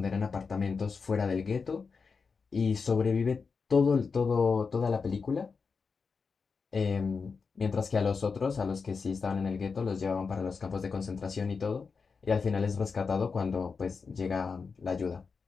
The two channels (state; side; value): quieter; right; 5.1 dB